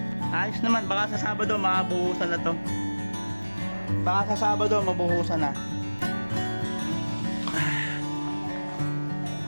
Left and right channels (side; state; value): both; inverted; correlation -1.00